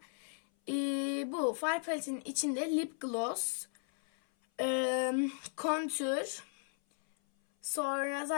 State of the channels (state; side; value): silent; right; 54 dB below the other